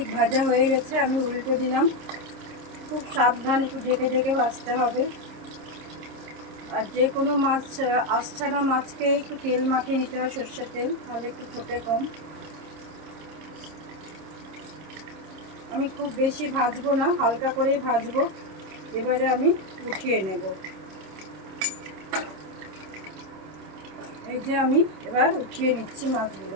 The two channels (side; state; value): left; late; 26 ms